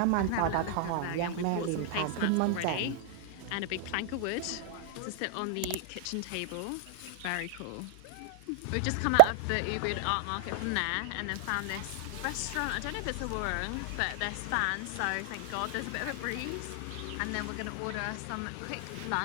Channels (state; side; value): different; both; correlation 0.00